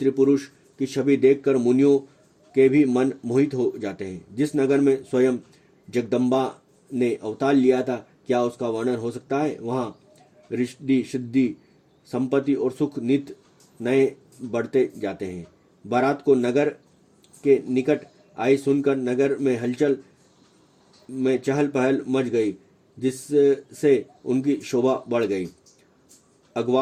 पुरुष की छवि देखकर मुनियों के भी मन मोहित हो जाते हैं। जिस नगर में स्वयं जगदम्बा ने अवतार लिया था, क्या उसका वर्णन हो सकता है। वहां रिद्धि, सिद्धि, संपत्ति और सुख नित नए बढ़ते जाते हैं। बारात को नगर के निकट आई सुनकर नगर में हलचल में चहल पहल मच गई, जिससे उनकी शोभा बढ़ गई।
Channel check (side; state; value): both; identical; correlation 1.00